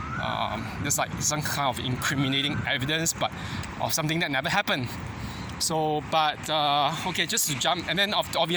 There's like some kind of incriminating evidence, but of something that never happened. So, but okay, just to jump, and then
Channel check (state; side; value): identical; both; correlation 1.00